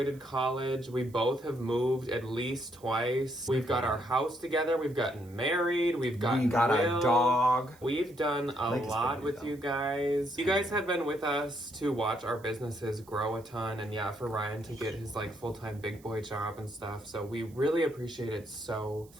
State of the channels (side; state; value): right; noise; hiss, 27 dB below the sound